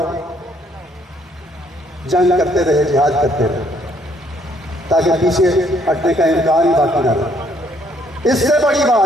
जंग करते रहे, जिहाद करते रहे, ताकि पीछे हटने का इम्कान ही बाकी न रहे। इससे बड़ी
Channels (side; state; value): both; normal; correlation 0.67